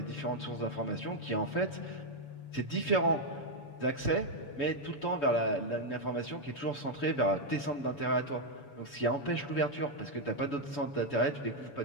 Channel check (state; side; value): late; right; 6.9 ms